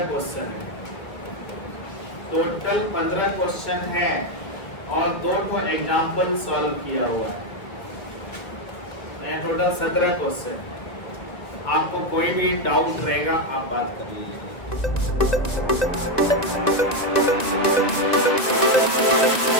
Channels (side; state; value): right; late; 1.9 ms